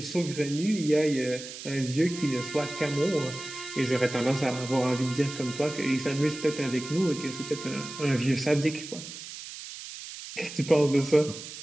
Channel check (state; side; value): noise; right; hiss, 11 dB below the sound